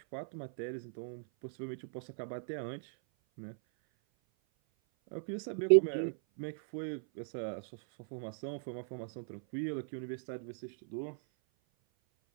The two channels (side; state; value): left; silent; 53 dB below the other